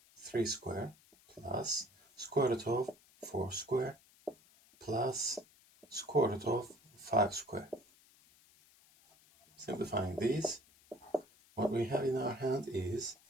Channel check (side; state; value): left; noise; hiss, 28 dB below the sound